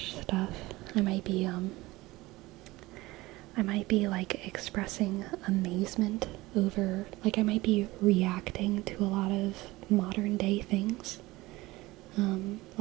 stuff. I might be like expressing amazement over, like I might be reacting to a lot of modern day things,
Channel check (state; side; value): quieter; left; 19.8 dB